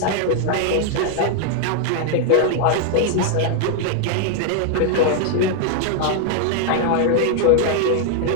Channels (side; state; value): both; different; correlation 0.00